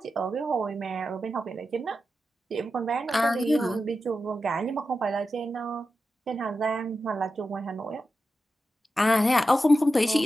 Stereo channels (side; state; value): both; normal; correlation 0.91